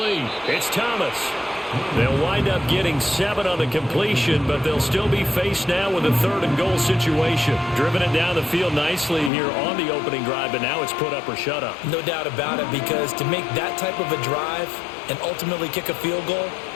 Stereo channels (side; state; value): right; drops out; at 9.3 s